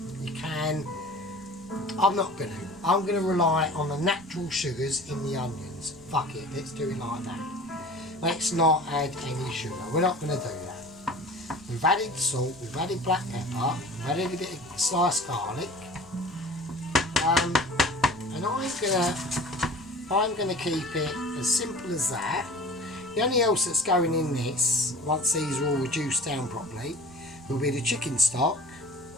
you can. I'm not going to. I'm going to rely on the natural sugars in the onions. Fuck it, let's do it like that. Let's not add any sugar. We're not going to do that. We've added salt, we've added black pepper, we've added a bit of sliced garlic. And I'm gonna keep it as simple as that. The only else that's going in this, once these are all reduced down properly, will be the chicken stock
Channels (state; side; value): noise; left; rumble, 26 dB below the sound